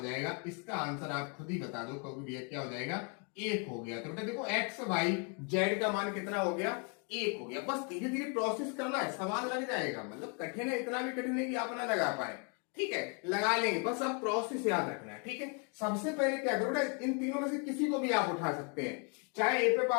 जाएगा? इसका आंसर आप खुद ही बता दो, क्योंकि भैया क्या हो जाएगा? एक हो गया। तो बेटा देखो x y z का मान कितना हो गया? एक हो गया। बस धीरे धीरे प्रोसेस करना है, सवाल लग जाएगा। मतलब कठिन है, इतना भी कठिन नहीं कि आप ना लगा पाए। ठीक है। लगा लेंगे, बस आप प्रोसेस याद रखना है। ठीक है। सबसे पहले क्या करो बेटा, इन तीनों में से किसी को भी आप उठा सकते हैं। चाहे ए पे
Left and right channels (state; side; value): quieter; right; 36.5 dB